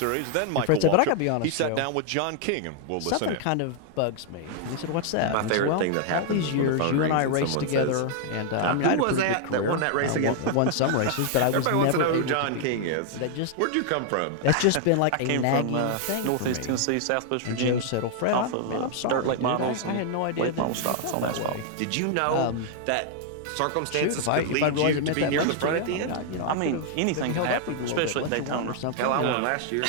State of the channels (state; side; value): different; both; correlation 0.00